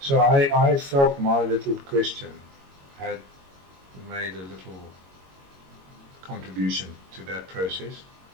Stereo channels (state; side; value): late; left; 22 ms